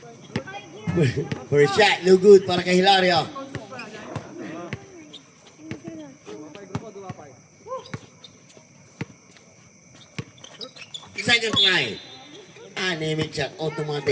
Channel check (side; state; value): both; identical; correlation 1.00